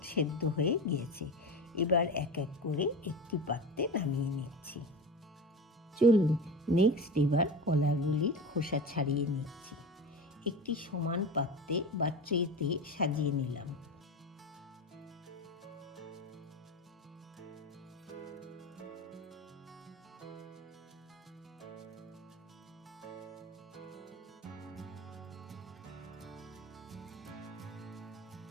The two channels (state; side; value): normal; both; correlation 0.27